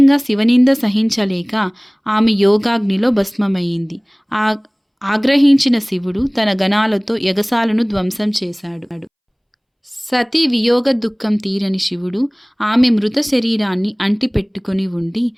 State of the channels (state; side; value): identical; both; correlation 1.00